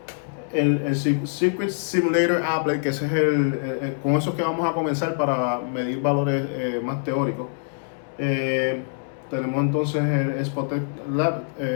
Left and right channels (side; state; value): right; silent; digital silence